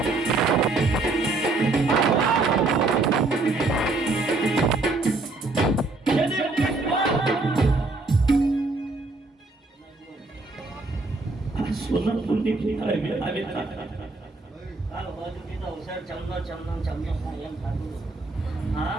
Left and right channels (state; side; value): quieter; left; 3.4 dB